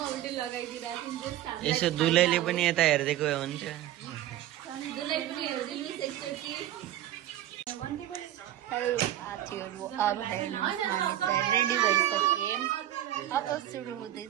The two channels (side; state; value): left; quieter; 12.9 dB